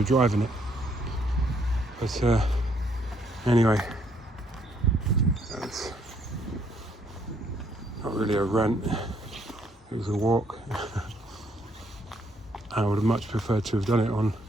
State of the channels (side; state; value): both; normal; correlation 0.70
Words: driving it. But anyway, that's not really a rant, it was a walk. I would have much preferred to have done it on